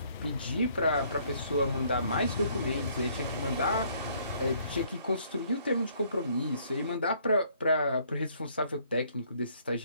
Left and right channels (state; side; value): inverted; both; correlation -0.64